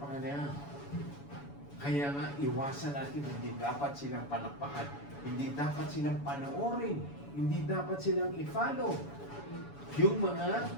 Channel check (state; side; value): late; right; 7.1 ms